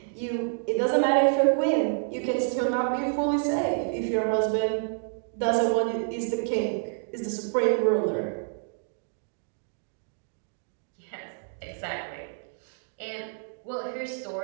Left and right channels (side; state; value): left; silent; digital silence